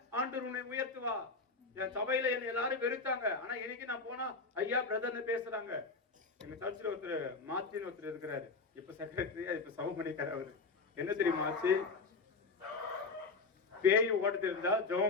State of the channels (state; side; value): quieter; right; 4.1 dB